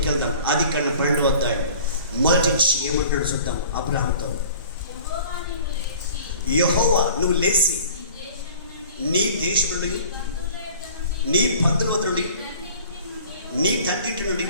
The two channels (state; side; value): inverted; both; correlation -0.47